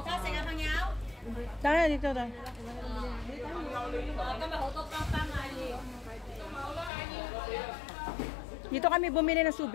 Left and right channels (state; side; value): drops out; right; at 6.9 s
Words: Tara, dito daw. Dito kami bumili ng